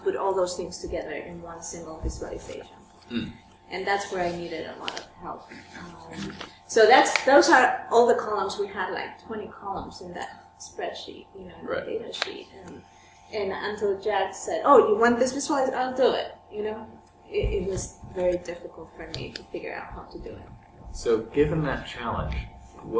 all those things together in one single visualization. And that's where I needed a lot of help. So those are all the columns. We had like 20 columns in that spreadsheet, in the data sheet. And until Jack said, "Oh, you want this visualized? I'll do it." It was very difficult for me to figure out how to do it. So, given that challenge,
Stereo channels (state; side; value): identical; both; correlation 1.00